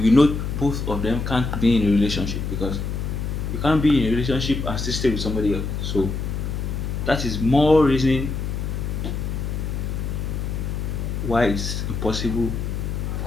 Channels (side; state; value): left; noise; hum, 3 dB below the sound